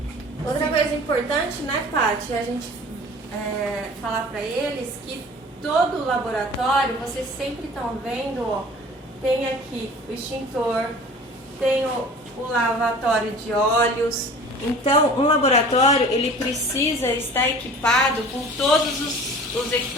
Outra coisa importante, né, Paty, é a gente falar para eles que todo o laboratório, vocês sempre estão vendo, ó, tem aqui o extintor, tem o lavatório de óleos. Então, um laboratório, ele precisa estar equipado com todos os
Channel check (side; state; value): both; normal; correlation 0.44